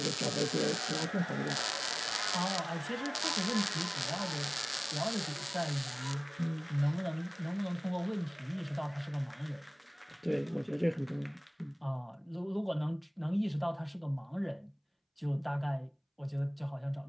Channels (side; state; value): both; identical; correlation 1.00